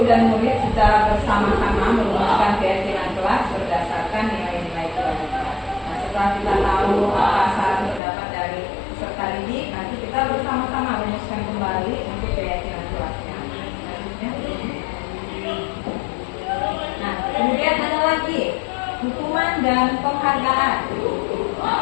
dan murid secara bersama-sama merumuskan keyakinan kelas berdasarkan nilai-nilai kewajiban. Nah, setelah kita tahu apa saran pendapat dari peserta didik, nanti kita bersama-sama merumuskan kembali untuk keyakinan kelasnya. Nah, kemudian ada lagi hukuman dan penghargaan.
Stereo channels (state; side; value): drops out; right; at 8.0 s